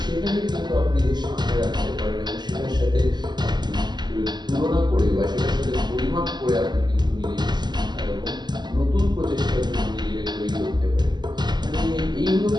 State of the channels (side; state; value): left; late; 0.21 ms